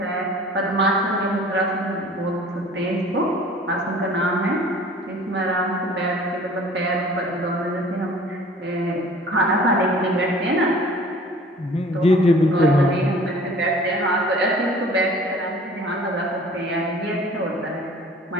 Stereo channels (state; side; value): normal; both; correlation 0.48